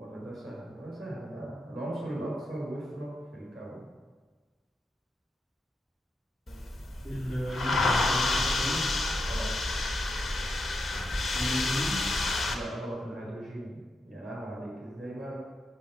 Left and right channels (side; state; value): both; normal; correlation 0.85